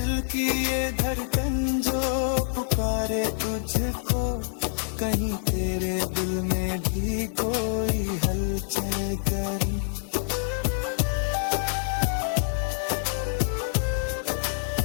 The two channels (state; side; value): silent; right; digital silence